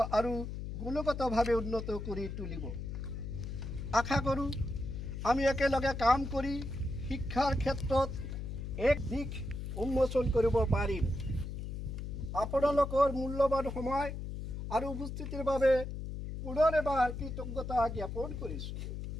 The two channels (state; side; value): noise; left; hum, 6 dB below the sound